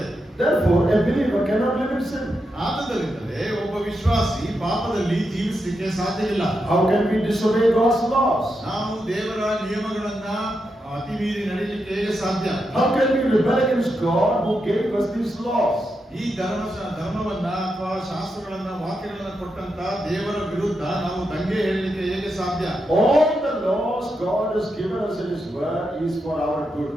Therefore, a believer cannot live in sin. ಆದ್ದರಿಂದಲೇ ಒಬ್ಬ ವಿಶ್ವಾಸಿ ಪಾಪದಲ್ಲಿ ಜೀವಿಸಲಿಕ್ಕೆ ಸಾಧ್ಯವಿಲ್ಲ. How can we disobey God's laws? ನಾವು ದೇವರ ನಿಯಮಗಳನ್ನ ಅತಿ ಮೀರಿ ನಡೆಯಲಿಕ್ಕೆ ಹೇಗೆ ಸಾಧ್ಯ? How can we rebel against God who gave us these laws? ಈ ಧರ್ಮವನ್ನ ಅಥವಾ ಶಾಸ್ತ್ರಗಳನ್ನ ವಾಕ್ಯಗಳನ್ನ ಕೊಟ್ಟಂತ ದೇವರ ವಿರುದ್ಧ ನಾವು ದಂಗೆ ಹೇಳಲಿಕ್ಕೆ ಹೇಗೆ ಸಾಧ್ಯ? All the laws God has given us in His Word is for our good.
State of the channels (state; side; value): normal; both; correlation 0.85